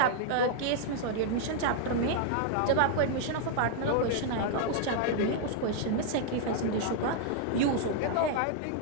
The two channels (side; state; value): both; different; correlation -0.01